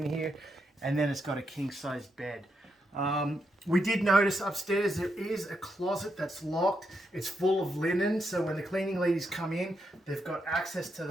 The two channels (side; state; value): both; normal; correlation 0.82